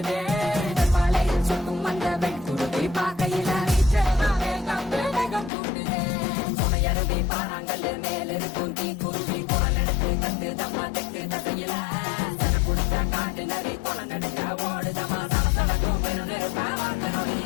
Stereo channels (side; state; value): right; drops out; at 5.5 s